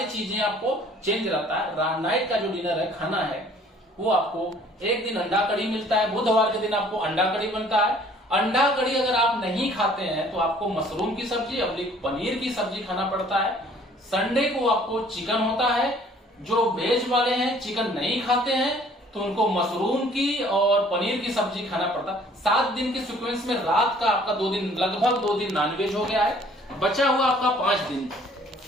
चीजें आपको चेंज रहता है। नाइट का जो डिनर है, खाना है, वो आपको एक दिन अंडा कड़ी मिलता है, बुधवार के दिन आपको अंडा कड़ी बनता है। अंडा कड़ी अगर आप नहीं खाते हैं तो आपको मशरूम की सब्जी और पनीर की सब्जी खाना पड़ता है। संडे को आपको चिकन होता है। जो वेज वाले हैं, चिकन नहीं खाते हैं, तो उनको मशरूम की और पनीर की सब्जी खाना पड़ता है। 7 दिन के सीक्वेंस में रात का आपका 2 दिन, लगभग 2 दिन नॉनवेज हो गया है। बचा हुआ आपका 5 दिन।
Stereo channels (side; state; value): both; normal; correlation 0.56